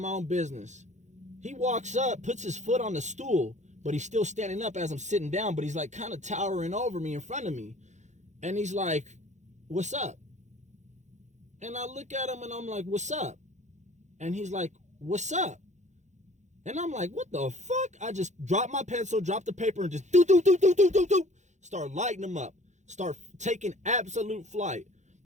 own business. He walks up, puts his foot on the stool, but he's still standing up as I'm sitting down, but he's like kind of towering over me in front of me. And he's like, "What's up?" And I look at him and I'm like, "What's up?" And he's like, "What's up?" And I'm like, "What the fuck?" I just dropped my pencil, dropped the paper, and just start lighting him up. Start taking absolute flight.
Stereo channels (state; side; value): late; left; 0.34 ms